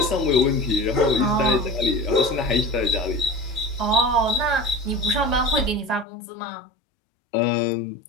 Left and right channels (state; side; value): drops out; right; at 6.1 s